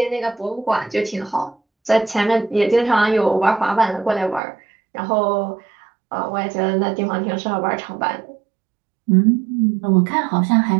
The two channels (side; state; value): left; drops out; at 4.4 s